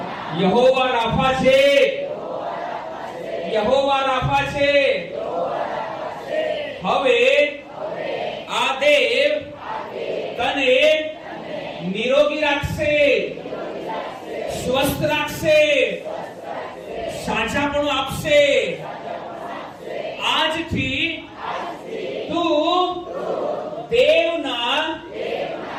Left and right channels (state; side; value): identical; both; correlation 1.00